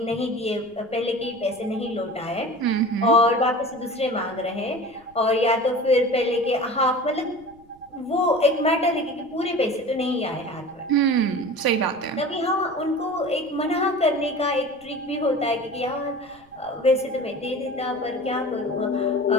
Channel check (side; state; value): right; noise; rumble, 29 dB below the sound